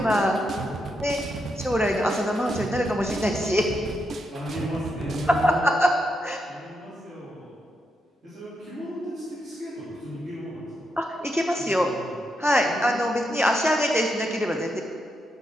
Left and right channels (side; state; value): both; normal; correlation 0.82